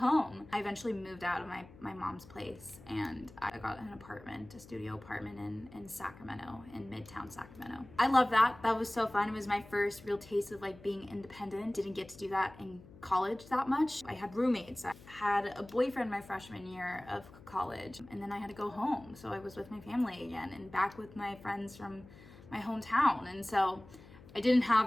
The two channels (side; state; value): left; noise; hum, 20 dB below the sound